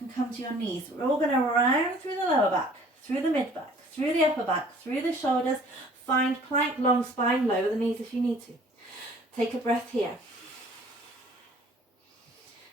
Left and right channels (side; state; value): both; normal; correlation 0.53